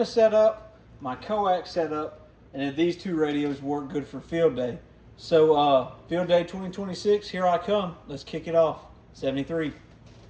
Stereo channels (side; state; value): both; identical; correlation 1.00